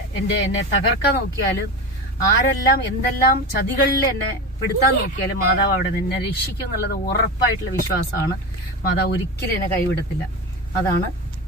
എന്നെ തകർക്കാൻ നോക്കിയാലും, ആരെല്ലാം എന്തെല്ലാം ചതികളിൽ എന്നെ പെടുത്താൻ നോക്കിയാലും മാതാവ് അവിടെ എന്നെ രക്ഷിക്കും എന്നുള്ളത് ഉറപ്പായിട്ടുള്ള വിശ്വാസമാണ്. മാതാവ് ഒരിക്കലും എന്നെ കൈവിടത്തില്ല. അതാണ്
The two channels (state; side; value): normal; both; correlation 0.24